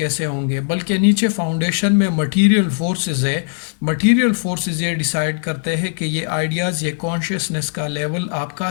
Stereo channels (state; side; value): silent; right; digital silence